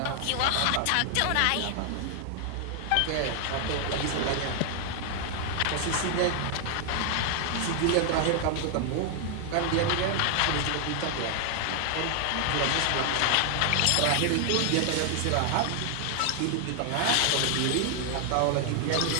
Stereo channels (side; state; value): both; different; correlation 0.00